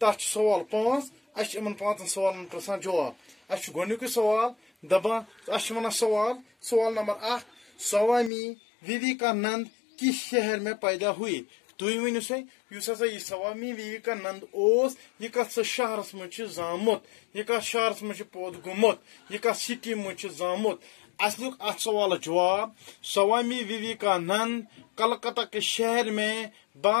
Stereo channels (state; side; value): drops out; right; at 8.3 s